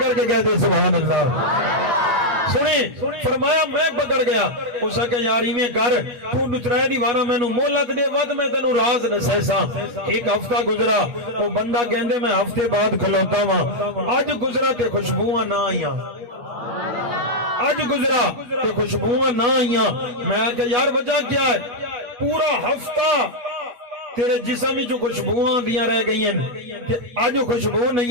کے کہتے سبحان اللہ سنیں فرمایا میں پکڑ گیا اس کہ یاری میں کر تو نترائے دیوارا میں نو مولت دے ود میں تنو راز نسیسا ایک ہفتہ گزرا وہ بندہ کہندے میں ہفتے بعد کھلوتا ہوں آج گزرا تے خوشبواں نہ آئیاں آج گزرا تے خوشبواں نہ آئیاں میں کہ یار وجہ کیا ہے پورا ہفتہ تیرے جسم جو خوشبواں دیاں رہ گئی ہیں تے آج خوشبو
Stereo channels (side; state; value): left; late; 8.3 ms